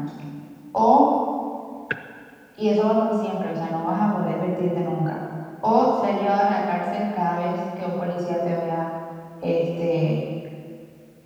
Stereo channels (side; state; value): both; identical; correlation 1.00